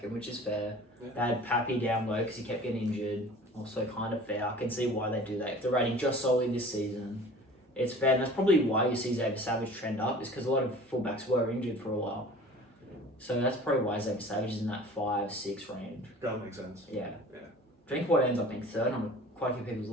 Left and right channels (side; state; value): both; normal; correlation 0.44